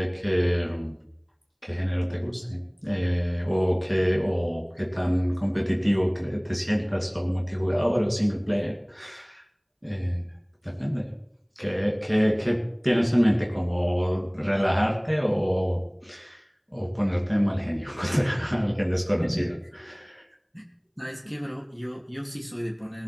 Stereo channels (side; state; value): both; identical; correlation 1.00